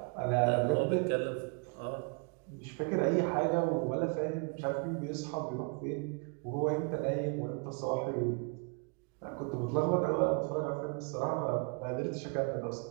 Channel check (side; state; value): left; quieter; 36.8 dB